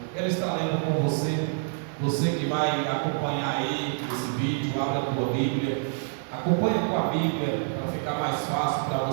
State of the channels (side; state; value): left; silent; 60 dB below the other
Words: Quero estar lendo com você que vai acompanhar aí esse vídeo, abra a tua Bíblia, acompanha com a Bíblia para ficar mais fácil para